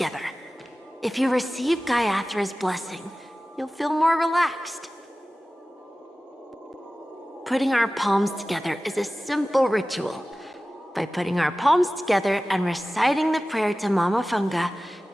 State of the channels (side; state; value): both; normal; correlation 0.96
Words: If you receive Gaiathra's blessing, you'll feel more relaxed. Putting our palms together is a simple ritual. By putting our palms together and reciting the prayer to Mama Funga,